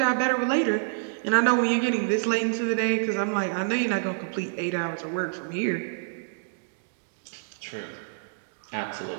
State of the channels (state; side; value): silent; left; digital silence